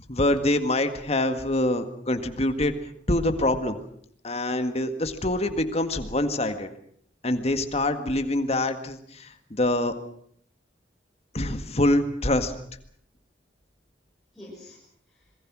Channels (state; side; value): normal; both; correlation 0.47